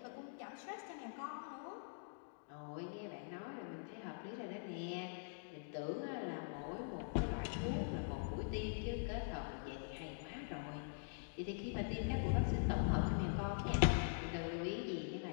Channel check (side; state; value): right; silent; digital silence